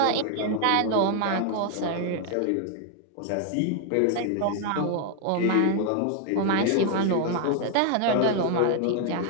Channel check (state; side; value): different; both; correlation 0.00